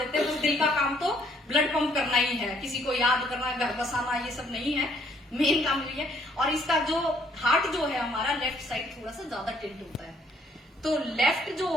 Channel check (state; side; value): normal; both; correlation 0.65